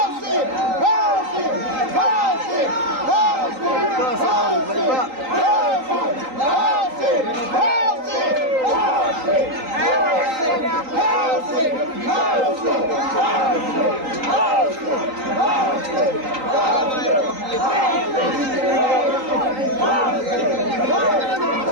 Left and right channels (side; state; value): left; late; 3.8 ms